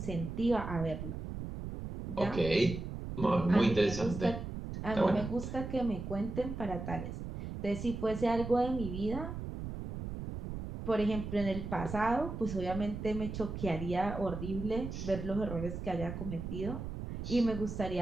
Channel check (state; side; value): noise; right; rumble, 7 dB below the sound